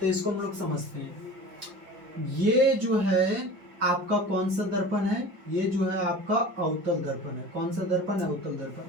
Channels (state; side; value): late; left; 5.1 ms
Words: इसको हम लोग समझते हैं। ये जो है आपका कौन सा दर्पण है, ये जो है आपका अवतल दर्पण है। कौन सा दर्पण है, अवतल